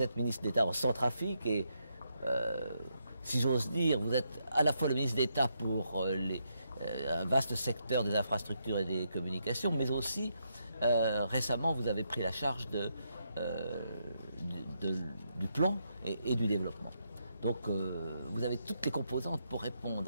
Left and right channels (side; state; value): both; inverted; correlation -0.79